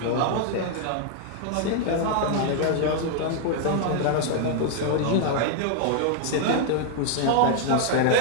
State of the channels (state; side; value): different; both; correlation 0.00